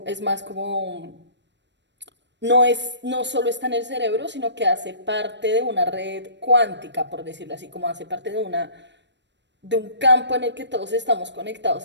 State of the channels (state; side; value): late; left; 0.52 ms